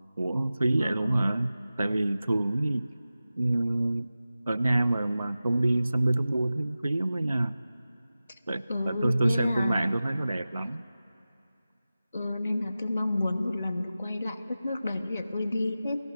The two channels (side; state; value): both; inverted; correlation -0.95